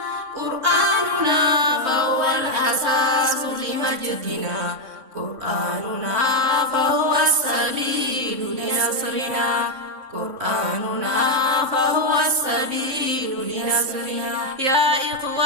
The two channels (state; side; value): late; left; 3.6 ms